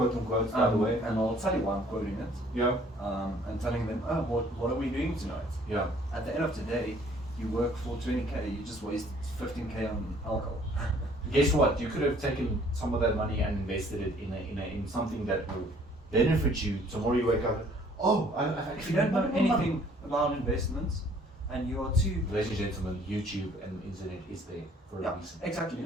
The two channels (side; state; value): both; normal; correlation 0.58